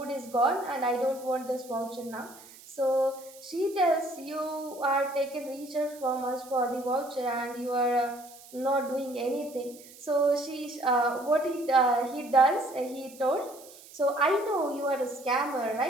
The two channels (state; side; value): noise; right; hiss, 20 dB below the sound